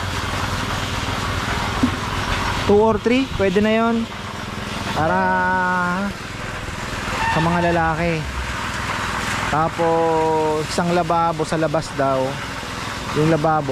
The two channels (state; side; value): identical; both; correlation 1.00